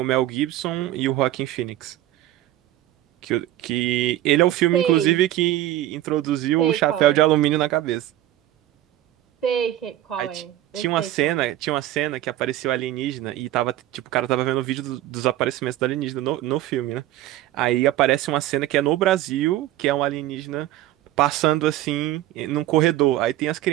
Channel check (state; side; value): quieter; left; 14.0 dB